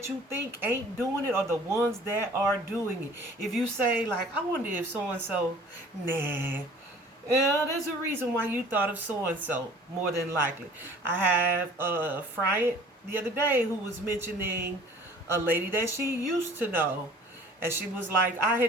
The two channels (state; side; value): normal; both; correlation 0.49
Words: you think ain't doing it are the ones that are doing it. If you say, like, I wonder if so-and-so, nah. Yeah, there's a reason why you thought of so-and-so, more than likely. I have a friend the other day who was mentioning a lady that she used to know. And she was like, I